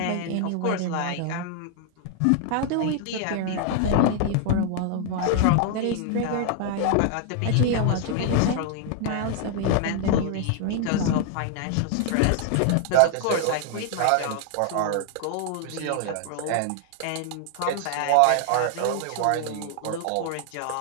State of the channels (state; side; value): different; both; correlation 0.00